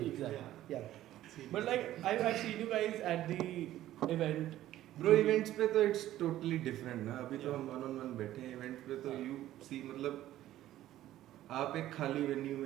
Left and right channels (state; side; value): quieter; left; 13.7 dB